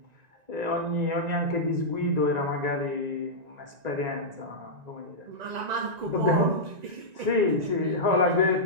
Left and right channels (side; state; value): left; late; 1.9 ms